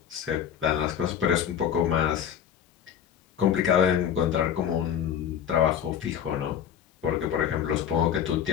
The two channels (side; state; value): right; quieter; 9.0 dB